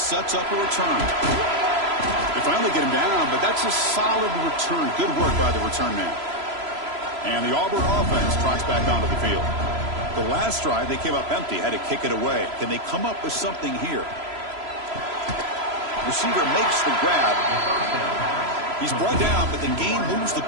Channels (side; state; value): left; late; 3.0 ms